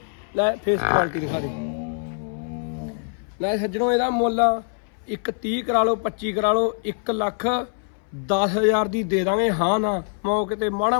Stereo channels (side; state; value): right; silent; 60 dB below the other